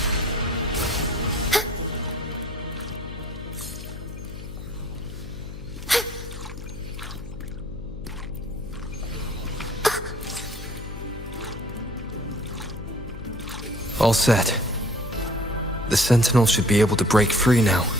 All set. The Sentinel should be able to break free now.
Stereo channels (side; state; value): left; noise; hum, 11 dB below the sound